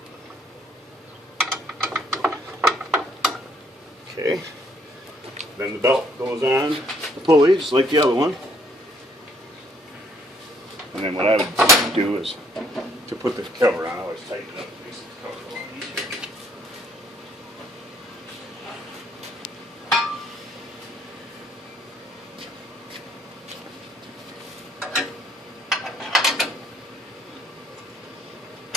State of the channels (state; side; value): normal; both; correlation 0.66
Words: Okay. Then the belt goes on the pulley, just like the other one. And then what I would do is to put the cover on, I always tighten it up. Makes the cover a lot easier.